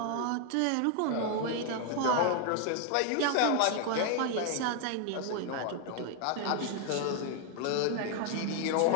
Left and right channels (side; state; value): both; different; correlation 0.01